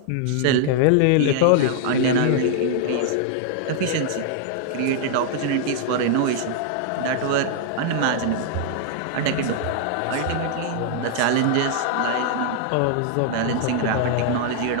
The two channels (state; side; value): different; both; correlation -0.01